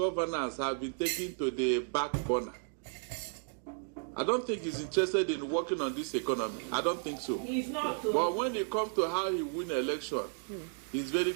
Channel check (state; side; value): silent; left; 55 dB below the other